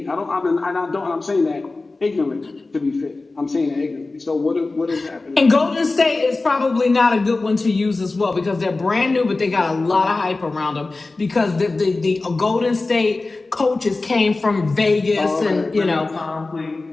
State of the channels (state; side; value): quieter; right; 3.4 dB